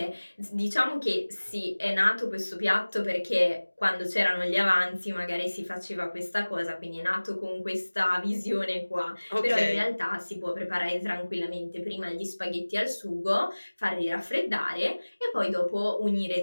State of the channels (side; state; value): both; inverted; correlation -1.00